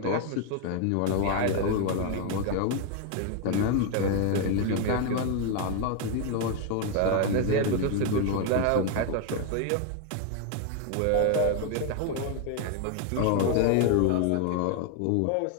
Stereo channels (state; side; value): different; both; correlation 0.01